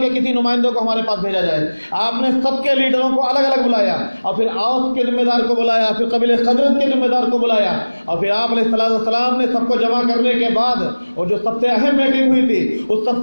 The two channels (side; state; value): both; inverted; correlation -1.00